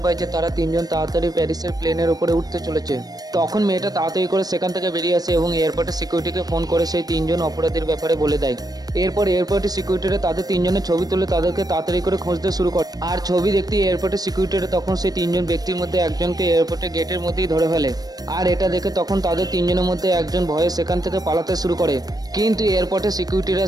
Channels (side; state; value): left; late; 0.19 ms